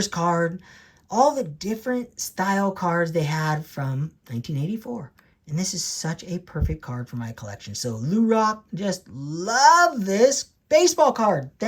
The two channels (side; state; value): both; identical; correlation 1.00